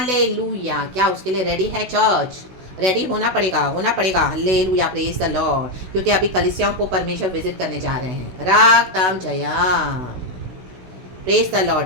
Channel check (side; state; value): left; late; 16 ms